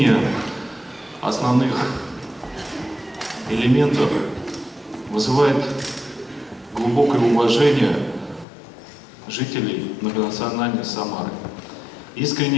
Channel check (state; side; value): drops out; right; at 8.5 s